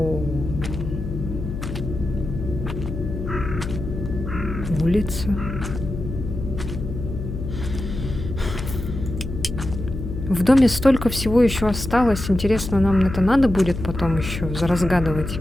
Улица. В доме столько всего еще осталось. Интересно, нам это надо будет потом еще разгадывать.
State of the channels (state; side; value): noise; left; hum, 6 dB below the sound